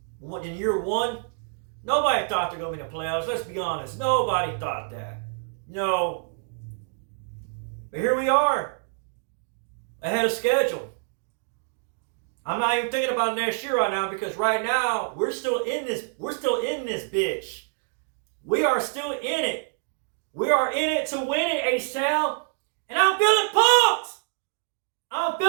In year one, Nobody thought they're going to be in the playoffs. Let's be honest. Nobody thought that. No. But here we are. Ahead of schedule. I'm not even thinking about next year right now because right now we're still in this. We're still in this bitch. We are still in it. We are in it to win it, H-Town. And I'm feeling pumped. I'm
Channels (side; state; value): left; silent; digital silence